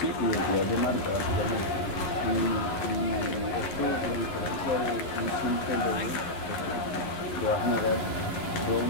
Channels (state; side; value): late; right; 11 ms